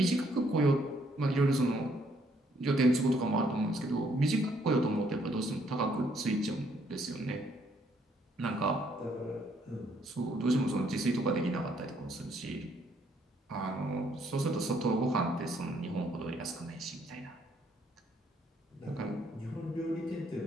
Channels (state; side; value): normal; both; correlation 0.68